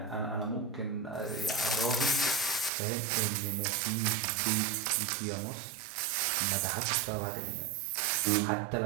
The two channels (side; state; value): left; drops out; at 2.7 s